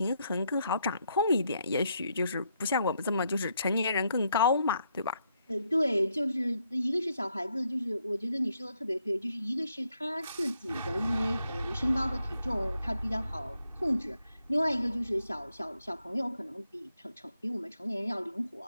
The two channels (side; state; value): both; inverted; correlation -0.77